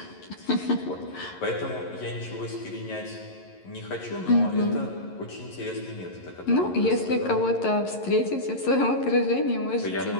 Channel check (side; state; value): right; late; 11 ms